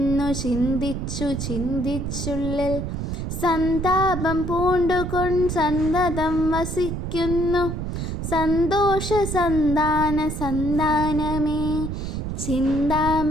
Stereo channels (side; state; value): right; noise; rumble, 4 dB below the sound